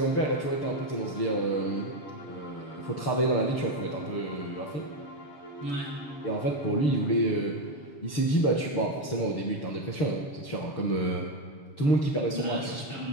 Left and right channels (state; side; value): late; right; 6.7 ms